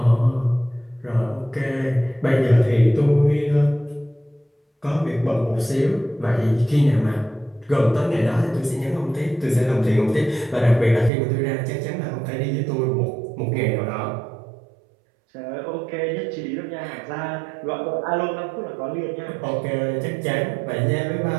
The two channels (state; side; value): drops out; left; at 11.1 s